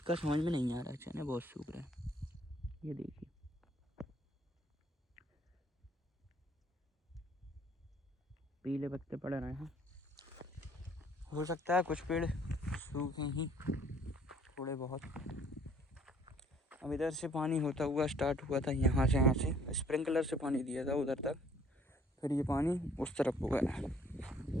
समझ में नहीं आ रहा। चने बहुत सूख रहे हैं, ये देखिए। पीले पत्ते पड़ रहे हैं। हो सकता है कुछ पेड़ सूखे ही थोड़े बहुत। अब इधर से पानी होता हुआ स्टार्ट हुआ था, यहाँ से स्प्रिंकलर से पानी दिया था उधर तक, फिर ये पानी उस तरफ हो गया।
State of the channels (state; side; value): normal; both; correlation 0.59